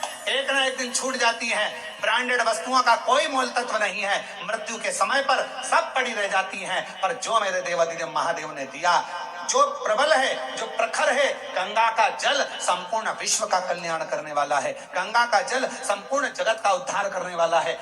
एक ना एक दिन छूट जाती हैं। ब्रांडेड वस्तुओं का कोई मोल तत्व नहीं है, मृत्यु के समय पर सब पड़ी रह जाती हैं। पर जो मेरे देवादिदेव महादेव ने दिया, जो प्रबल है, जो प्रखर है, गंगा का जल संपूर्ण विश्व का कल्याण करने वाला है। गंगा का जल संपूर्ण जगत का उद्धार करने वाला है।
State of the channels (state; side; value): identical; both; correlation 1.00